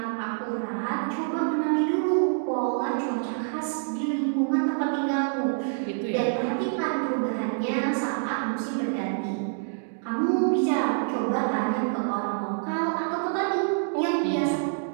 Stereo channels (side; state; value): left; silent; digital silence